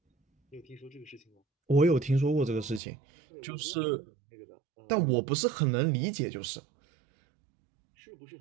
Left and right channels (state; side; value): drops out; left; at 2.8 s